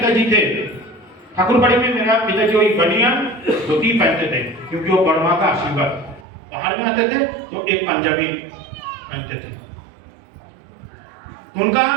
थे, ठाकुरबाड़ी में मेरा पिताजी वही बनियान धोती पहनते थे, क्योंकि वो वर्मा का आशीर्वाद। बाहर में आते थे तो एक पंजाबी पहनते थे। उनका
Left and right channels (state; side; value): drops out; left; at 6.2 s